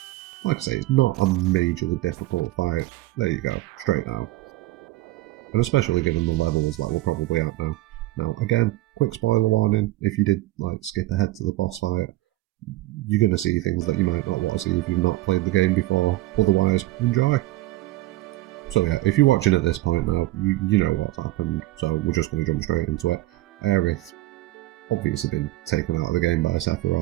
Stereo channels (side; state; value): left; quieter; 17.4 dB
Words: Like I say, it's not a majorly difficult fight. There you go, straight down. And especially given the levels that we're probably at now. Now, again, quick spoiler warning, if you did skip ahead to the boss fight, you're going to see things that you might not want to see if you've not played the game before. Otherwise, enjoy. So yeah, if you're watching at this point now, you know what's happened, so we're just going to jump straight into it. Aerith, obviously been taken out of the game by